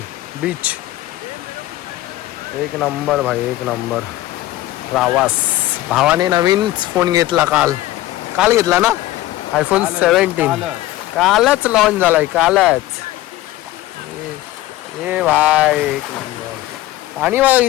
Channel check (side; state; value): right; quieter; 16.0 dB